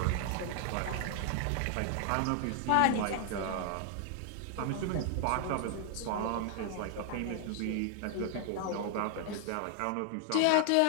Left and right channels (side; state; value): both; different; correlation 0.00